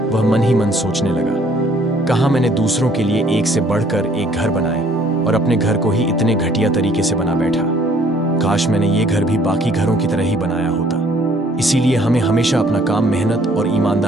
वह मन ही मन सोचने लगा, कहाँ मैंने दूसरों के लिए एक से बढ़कर एक घर बनाए और अपने घर को ही इतने घटिया तरीके से बना बैठा। काश मैंने ये घर भी बाकी घरों की तरह ही बनाया होता। इसीलिए हमें हमेशा अपना काम मेहनत और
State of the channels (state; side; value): normal; both; correlation 0.60